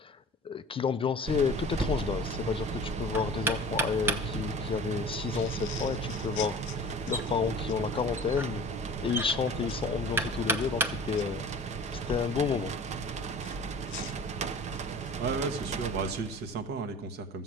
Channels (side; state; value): both; normal; correlation 0.41